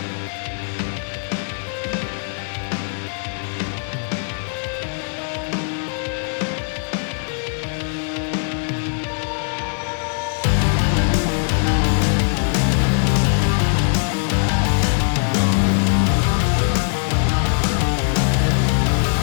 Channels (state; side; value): silent; right; 65 dB below the other